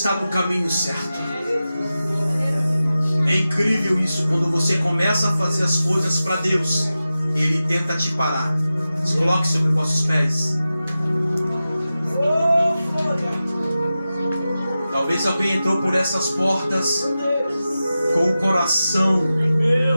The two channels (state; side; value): inverted; both; correlation -0.94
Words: no caminho certo. É incrível isso, quando você começa a fazer as coisas para Deus, ele tenta te parar. Se coloque sobre os vossos pés. Talvez alguém entrou por essas portas com o coração